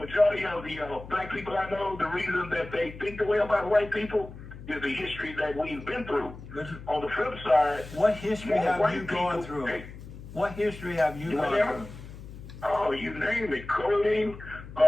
of the black people I know, the reason that they think the way about white people is the history that we've been through. On the flip side, What history have white you gone people- through? Hey, What history have you gone whatever. through? Oh, you name it. Clothing,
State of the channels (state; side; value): noise; left; hum, 14 dB below the sound